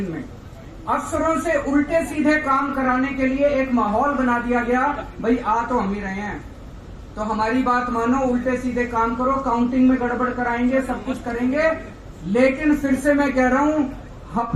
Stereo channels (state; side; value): identical; both; correlation 1.00